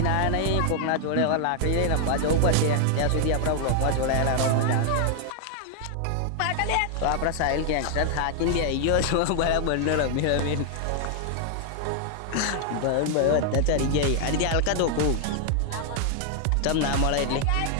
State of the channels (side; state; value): both; different; correlation 0.00